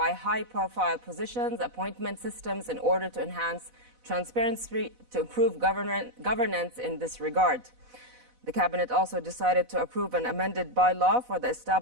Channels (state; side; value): late; left; 8.1 ms